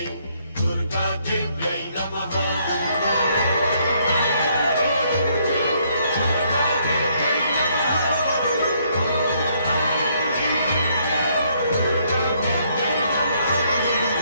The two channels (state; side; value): inverted; both; correlation -0.70